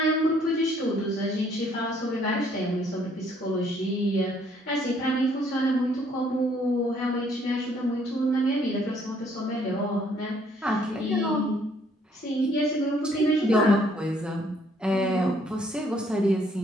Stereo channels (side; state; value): both; normal; correlation 0.65